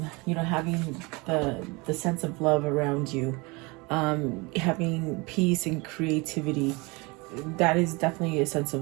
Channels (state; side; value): quieter; left; 26.4 dB